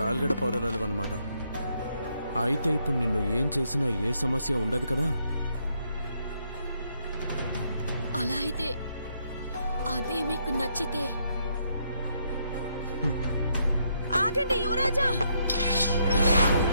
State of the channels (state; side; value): inverted; both; correlation -0.75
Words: పౌరరాలు అన్నమాట. అయితే ఇప్పుడు నిన్ను ఏం చేసినా ఏ సమస్య ఉండదు కదా? అలా అయితే అదే మీకు నచ్చితే. ఆగండి యువరాజా.